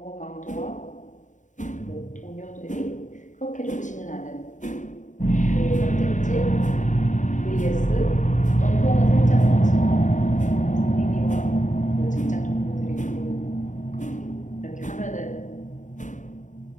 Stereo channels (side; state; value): right; late; 0.36 ms